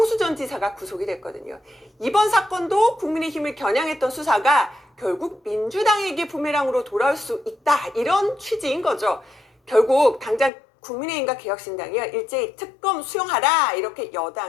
전 지사가 구속이 됐거든요. 이번 사건도 국민의힘을 겨냥했던 수사가 결국 민주당에게 부메랑으로 돌아올 수 있다, 이런 취지인 거죠. 결국 당장 국민의힘과 개혁신당이요, 일제히 특검 수용하라 이렇게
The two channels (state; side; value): drops out; right; at 10.5 s